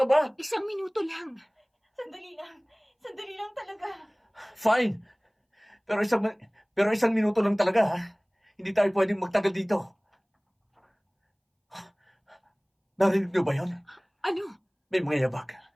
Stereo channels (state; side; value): identical; both; correlation 1.00